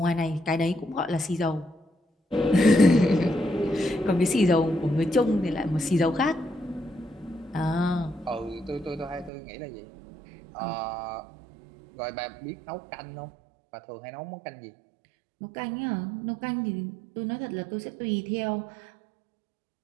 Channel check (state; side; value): drops out; left; at 9.3 s